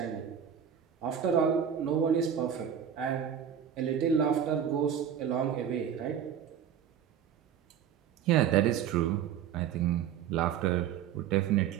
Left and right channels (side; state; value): left; quieter; 8.8 dB